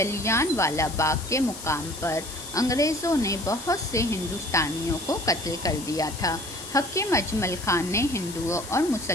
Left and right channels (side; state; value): left; noise; hiss, 12 dB below the sound